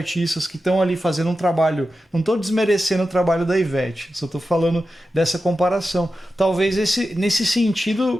que estão ali fazendo um trabalho, não estou desmerecendo o trabalho da Ivete, só estou falando dessa comparação. Talvez nesse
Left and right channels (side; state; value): both; normal; correlation 0.92